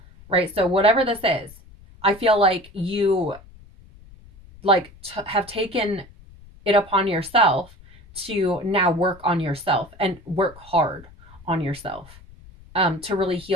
right? So whatever this is, I feel like you like have taken it upon yourself to now work on yourself and work hard on yourself, to really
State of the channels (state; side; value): noise; left; rumble, 22 dB below the sound